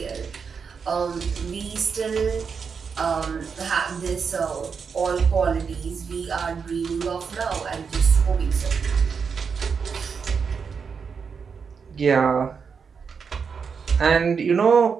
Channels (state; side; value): quieter; left; 5.9 dB